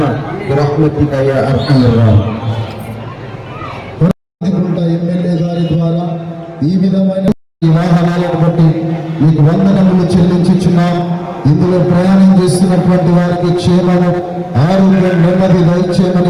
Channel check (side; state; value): both; identical; correlation 1.00